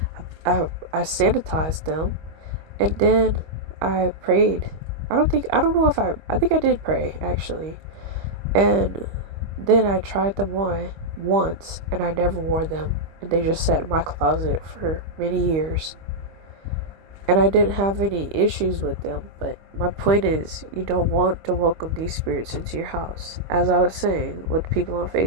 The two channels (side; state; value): left; late; 25 ms